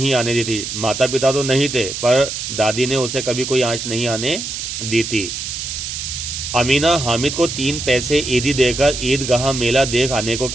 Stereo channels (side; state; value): right; noise; hiss, 5 dB below the sound